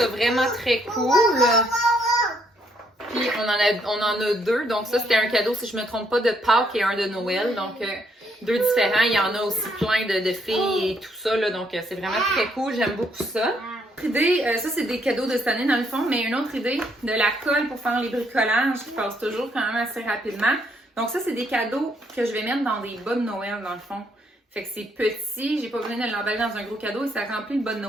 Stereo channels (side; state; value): both; normal; correlation 0.71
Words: vraiment très cool. Puis, on en a 2. Donc, ça, c'était un cadeau, si je ne me trompe pas, de Pâques et un de Noël. Donc, 2 différents. Il y en a aussi plein de filles et tout ça. Là, donc, c'est vraiment très cool. J'aime beaucoup ça. Autre idée, ça, c'est des cadeaux de cette année, dans le fond. Mais une autre idée, de la colle pour faire les bricolages qui passe toujours quand même assez rapidement. Donc, ça, c'est des cadeaux que je vais mettre dans des bas de Noël, dans le fond. Fait que c'est petit. J'ai pas besoin de l'emballer dans un gros cadeau et ça remplit le bas de